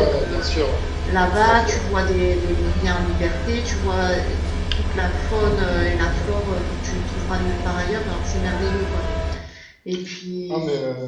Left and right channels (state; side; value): identical; both; correlation 1.00